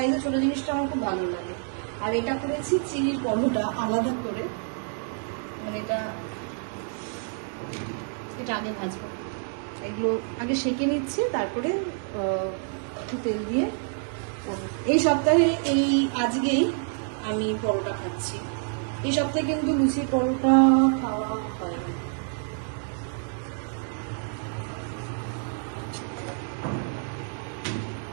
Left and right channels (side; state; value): left; silent; 56 dB below the other